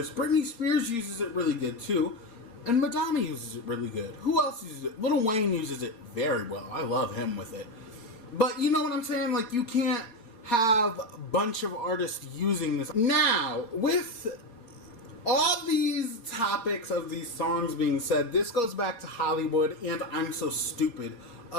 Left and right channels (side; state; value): right; late; 4.3 ms